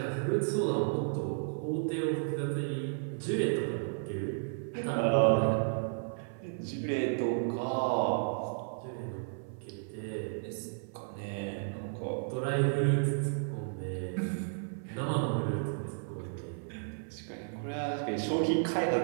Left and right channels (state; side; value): silent; left; 56 dB below the other